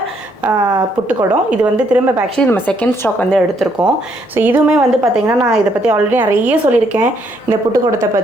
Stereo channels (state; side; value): late; right; 1.1 ms